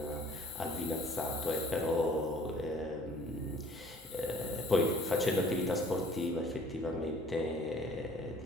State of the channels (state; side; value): normal; both; correlation 0.53